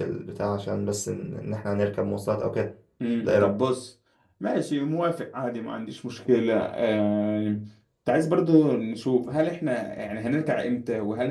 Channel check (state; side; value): identical; both; correlation 1.00